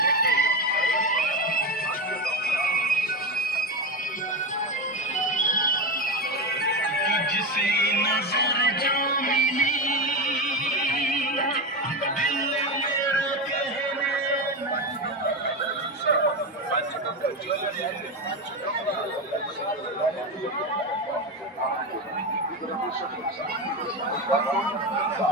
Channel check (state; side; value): normal; both; correlation 0.17